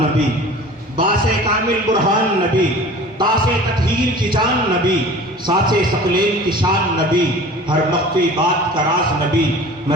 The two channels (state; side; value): normal; both; correlation 0.42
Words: नबी, बासे कामिल बुरहान नबी, तासे तत्हीर की जान नबी, सासे सकलेन की शान नबी, हर मख्फी बात का राज नबी।